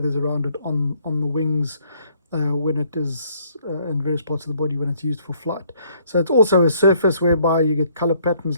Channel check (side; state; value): both; inverted; correlation -0.64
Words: around it on the wings, when it is in various parts of the body when it's used for flight. So it's also a surface whereby you get color patterns